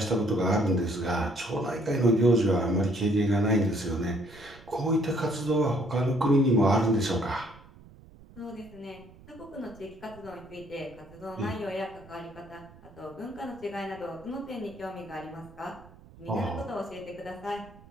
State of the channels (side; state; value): right; noise; rumble, 22 dB below the sound